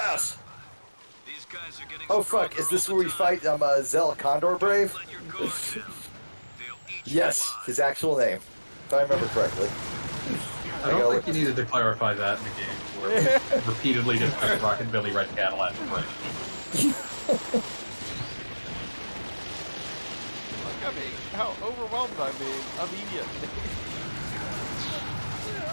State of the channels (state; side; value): inverted; both; correlation -1.00